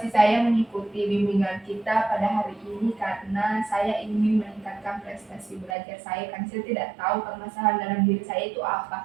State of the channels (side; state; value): left; drops out; at 5.8 s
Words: saya mengikuti bimbingan kita pada hari ini karena saya ingin meningkatkan prestasi belajar saya karena saya tidak tahu permasalahan dalam diri saya itu apa.